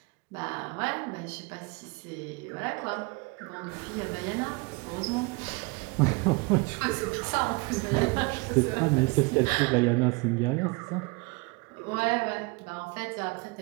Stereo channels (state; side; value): quieter; left; 28.0 dB